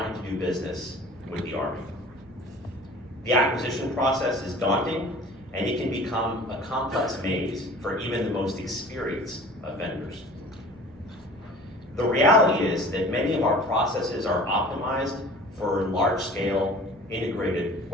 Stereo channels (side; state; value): right; noise; rumble, 24 dB below the sound